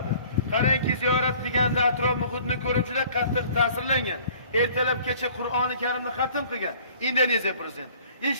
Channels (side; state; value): both; inverted; correlation -0.52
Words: Qarangki, ziyorat qilganda atrof muhitni ko'rib juda qattiq ta'sirlangan. Ertalab kecha Qur'oni Karimni xatm qilgan Indoneziya prezidenti.